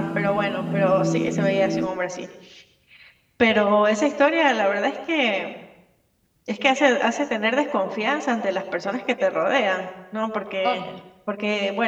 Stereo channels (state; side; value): identical; both; correlation 1.00